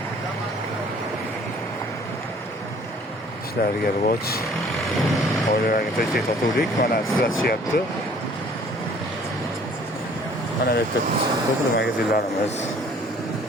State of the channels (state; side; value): normal; both; correlation 0.55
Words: ishlariga rivoj. Oilalarga tinchlik totuvlik mana sizlashyapti. Mana bu yerda turli magazinlarimiz.